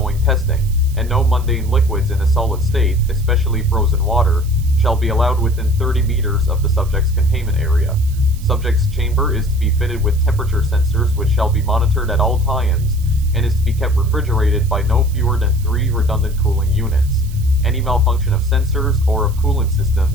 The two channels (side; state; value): right; noise; hiss, 21 dB below the sound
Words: testing, and no mundane liquids in a solid state, especially frozen water, shall be allowed within 30 meters of the subject's containment area. Subject's chamber is to be fitted with temperature sensors which shall be monitored at all times, and is to be kept refrigerated by no fewer than 3 redundant cooling units. Any malfunction of sensors or of coolant